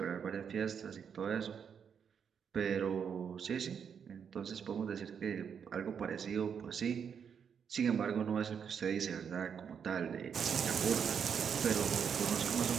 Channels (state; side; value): quieter; left; 7.3 dB